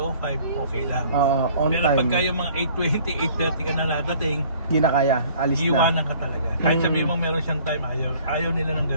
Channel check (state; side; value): inverted; both; correlation -0.54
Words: okay lang. On Pero time. pagka yung mga 8:20, 8:30 ka na nadating, Hindi na kaya. Alis na. iiwanan ka talaga. Kahit sabihin mo meron siyang time, ayaw nila ng